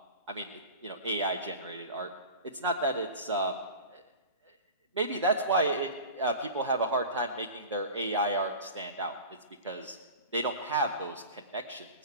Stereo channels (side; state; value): both; inverted; correlation -0.35